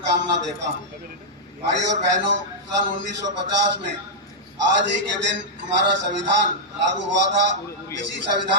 देता हूँ। भाई और बहनों, सन 1950 में आज ही के दिन हमारा संविधान लागू हुआ था। इसी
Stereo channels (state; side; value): normal; both; correlation -0.08